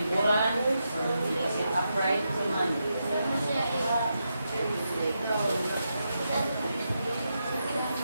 Sit upright naman.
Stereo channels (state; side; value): inverted; both; correlation -0.85